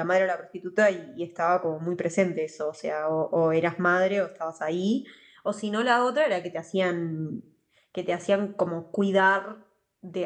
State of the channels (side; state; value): both; identical; correlation 1.00